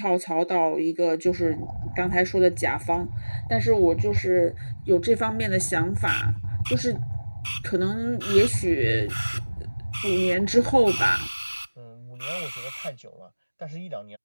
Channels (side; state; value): both; inverted; correlation -1.00